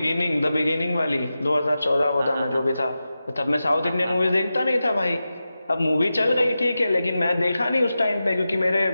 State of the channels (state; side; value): inverted; both; correlation -0.92